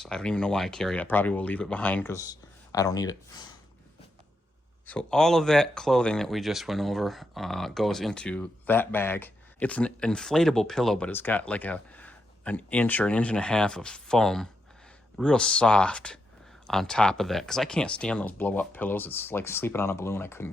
I don't even know why I carry it. I probably will leave it behind because I don't need it. So all of that clothing that we just went over goes into that bag. It's an inflatable pillow, but it's got like an inch or an inch and a half of foam, real soft on top of that. Because I can't stand those blow-up pillows. It's like sleeping on a balloon.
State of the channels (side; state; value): both; normal; correlation 0.83